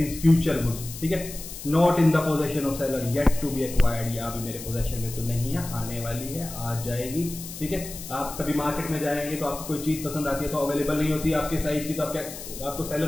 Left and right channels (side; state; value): left; noise; hiss, 11 dB below the sound